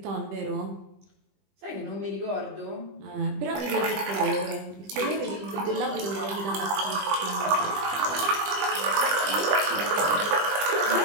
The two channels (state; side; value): late; left; 20 ms